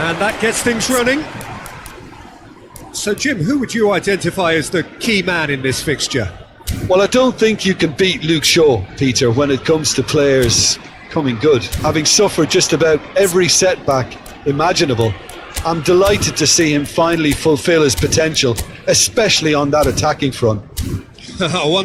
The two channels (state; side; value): identical; both; correlation 1.00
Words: that gets things running. So, Jim, who would you identify as the key man in this fixture? Well, I don't think you can beat Luke Shaw, Peter, when it comes to players coming good. Having suffered just about every setback imaginable, I'm delighted to see him finally fulfil his potential, especially on that attacking front. I